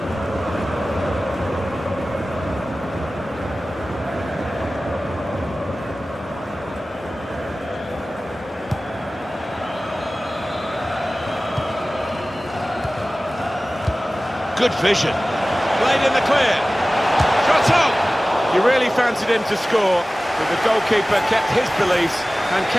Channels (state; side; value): normal; both; correlation 0.97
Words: Good vision. Played in the clear. Shot on! You really fancied him to score, but the goalkeeper kept his beliefs and